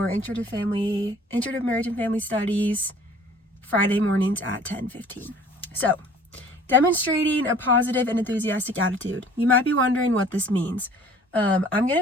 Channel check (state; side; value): normal; both; correlation 0.51